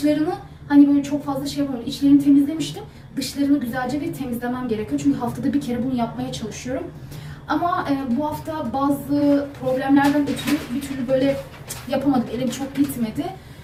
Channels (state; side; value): identical; both; correlation 1.00